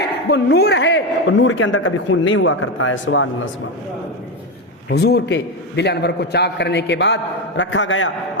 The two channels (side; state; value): both; normal; correlation 0.11